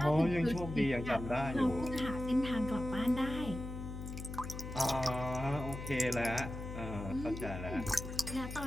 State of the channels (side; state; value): left; noise; hum, 8 dB below the sound